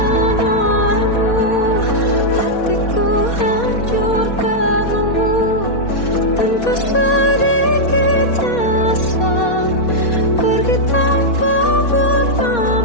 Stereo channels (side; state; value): right; late; 4.2 ms